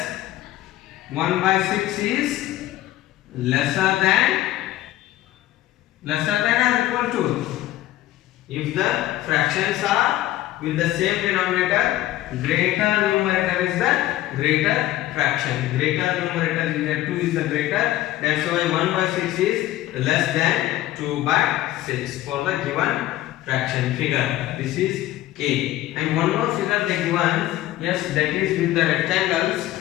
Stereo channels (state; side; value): quieter; right; 15.0 dB